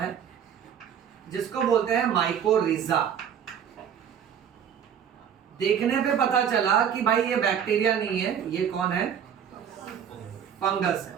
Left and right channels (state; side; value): quieter; left; 8.4 dB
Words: जिसको बोलते हैं माइकोरिजा। देखने पे पता चला कि भाई ये बैक्टीरिया नहीं है, ये कौन है? फंगस है।